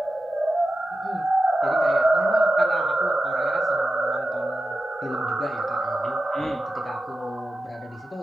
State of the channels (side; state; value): both; normal; correlation 0.92